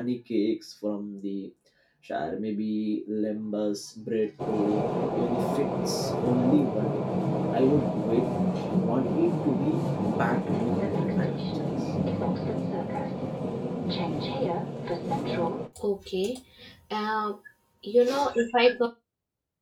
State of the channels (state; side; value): identical; both; correlation 1.00